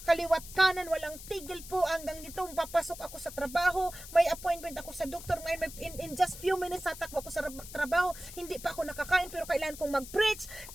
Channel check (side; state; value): left; noise; hiss, 14 dB below the sound